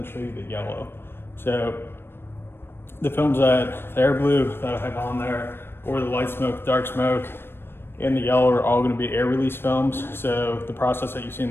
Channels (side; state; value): right; late; 0.11 ms